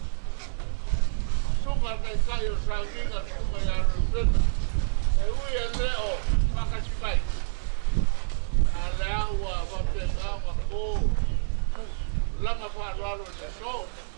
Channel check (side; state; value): left; silent; 60 dB below the other